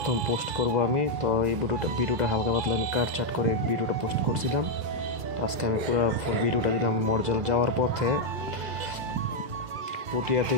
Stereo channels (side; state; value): left; late; 2.0 ms